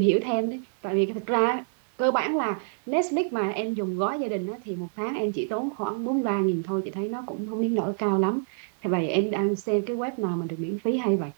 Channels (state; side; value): silent; left; 57 dB below the other